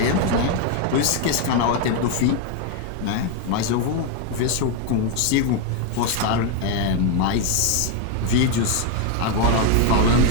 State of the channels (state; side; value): different; both; correlation 0.01